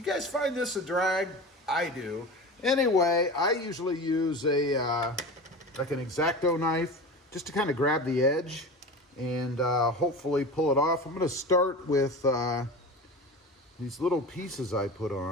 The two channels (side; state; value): both; normal; correlation 0.31